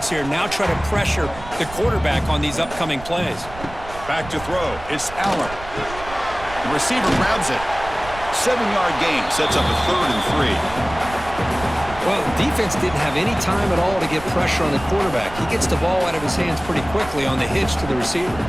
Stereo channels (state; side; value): noise; right; rumble, 14 dB below the sound